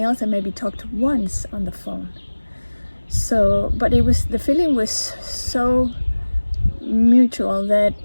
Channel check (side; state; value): both; inverted; correlation -1.00